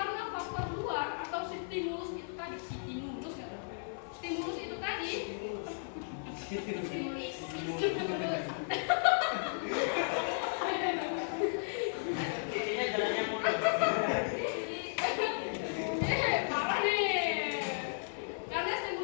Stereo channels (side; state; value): right; silent; 55 dB below the other